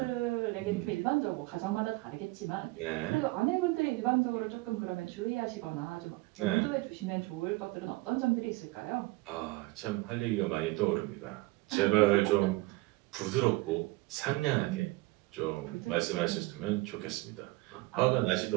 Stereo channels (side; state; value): left; quieter; 22.0 dB